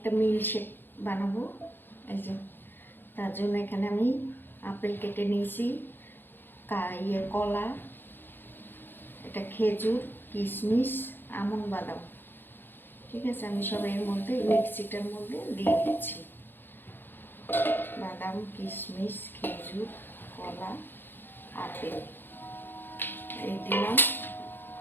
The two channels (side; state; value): right; late; 0.098 ms